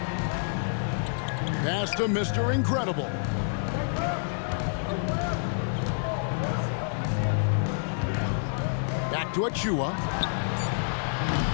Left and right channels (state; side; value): silent; right; 59 dB below the other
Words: Pass to Mr. Incredible. to Achua.